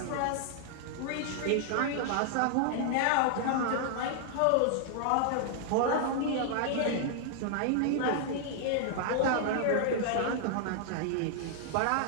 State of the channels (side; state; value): both; different; correlation 0.00